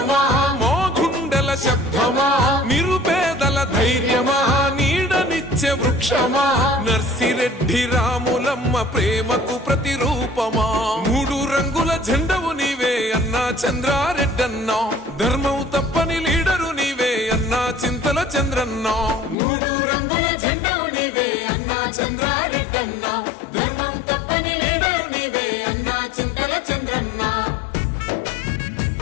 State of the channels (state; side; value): drops out; right; at 19.4 s